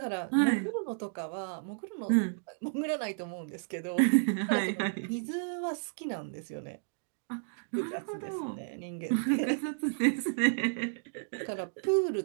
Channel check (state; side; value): silent; left; digital silence